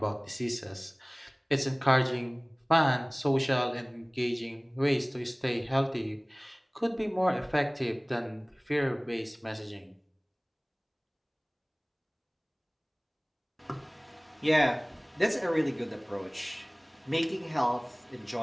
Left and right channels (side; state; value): both; identical; correlation 1.00